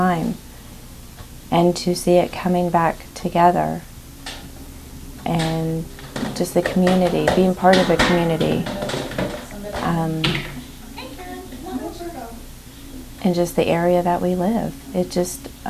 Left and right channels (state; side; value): identical; both; correlation 1.00